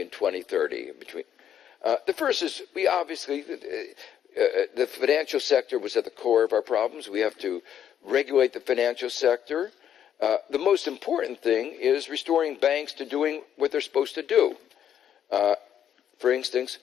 in 2030. The first is, we obviously, the financial sector was at the core of our problems. We have to regulate the financial sector. The most important thing is restoring banks to doing what they're supposed to do. For instance,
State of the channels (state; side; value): quieter; right; 9.6 dB